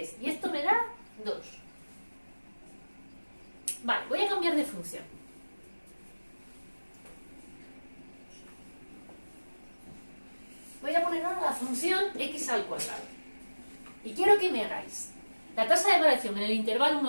Y esto me da 2. Vale, voy a cambiar de función. Voy a poner ahora la función x al cuadrado. Y quiero que me hagáis la tasa de variación en el intervalo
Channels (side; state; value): both; inverted; correlation -1.00